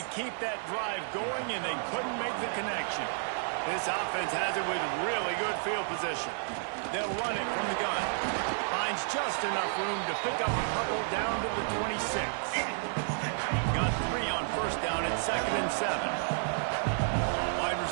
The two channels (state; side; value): silent; left; digital silence